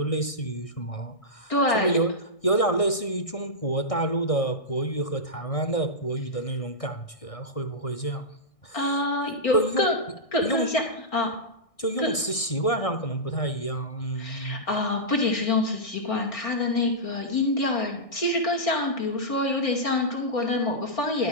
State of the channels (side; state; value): right; late; 1.6 ms